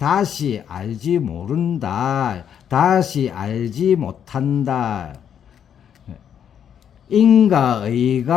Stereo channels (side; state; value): right; quieter; 8.7 dB